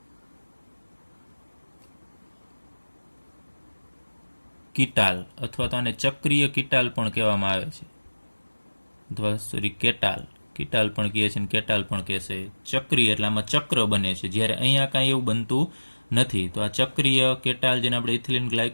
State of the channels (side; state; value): both; inverted; correlation -1.00